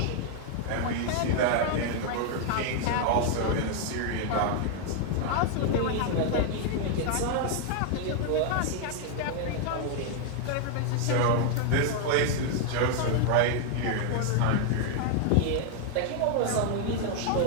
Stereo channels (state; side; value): different; both; correlation 0.00